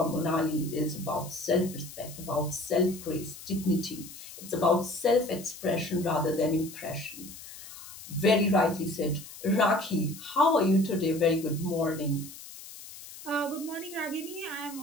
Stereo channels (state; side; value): noise; left; hiss, 15 dB below the sound